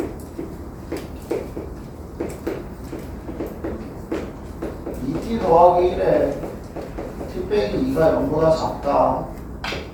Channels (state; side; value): identical; both; correlation 1.00